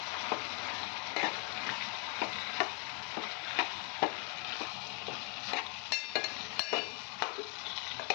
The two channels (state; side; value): quieter; right; 37.4 dB